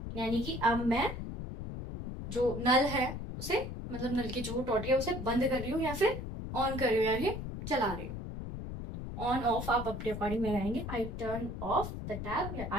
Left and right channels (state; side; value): noise; left; rumble, 7 dB below the sound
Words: यानी कि अब मैं जो नल है उसे, मतलब नल की जो टोटी है उसे बंद कर रही हूँ या फिर ऑन कर रही हूँ, यानी चला रही हूँ। ऑन ऑफ आप अपने अकॉर्डिंग लगाएंगे, I turn off the tap या